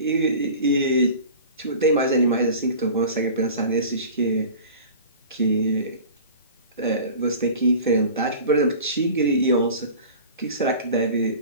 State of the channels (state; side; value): inverted; both; correlation -0.39